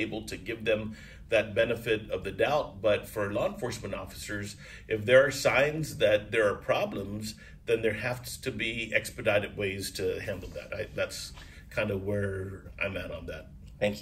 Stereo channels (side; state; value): both; identical; correlation 1.00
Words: to give them that benefit of the doubt. But for law enforcement officers, if there are signs that there are problems, then there has to be expedited ways to handle that. That's kind of where I'm at on that.